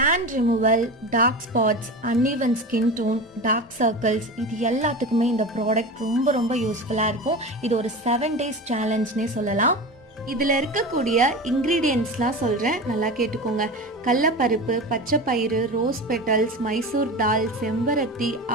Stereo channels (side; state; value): both; normal; correlation 0.28